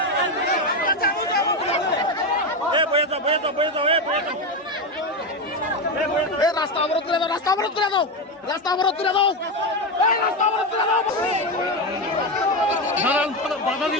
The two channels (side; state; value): both; normal; correlation 0.13